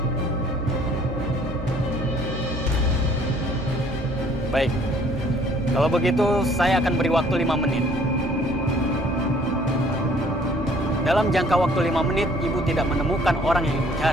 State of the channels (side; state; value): both; normal; correlation 0.58